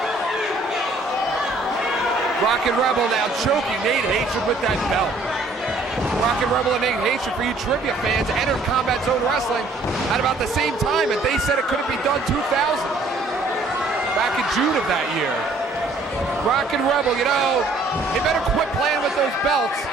Rockin' Rebel now choking Nate Hatred with that belt. Rockin' Rebel and Nate Hatred, for you trivia fans, entered Combat Zone Wrestling at about the same time, and they said it couldn't be done 2000. Back in June of that year. Rockin' Rebel, you know, he better quit playing with those belts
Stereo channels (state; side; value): quieter; left; 3.0 dB